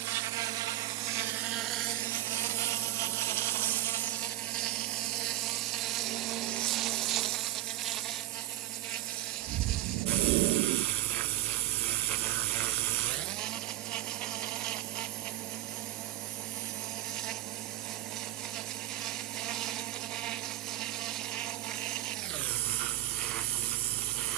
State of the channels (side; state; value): left; quieter; 15.4 dB